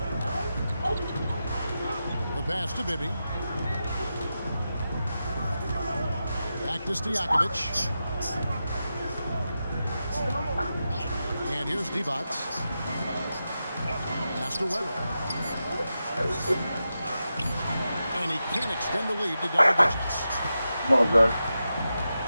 The pass to Bibby. Back to Stojakovic. And here's Divac. Pass to Weber. And he can't extend the lead to double digits. Come on, guys.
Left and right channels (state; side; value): inverted; both; correlation -0.90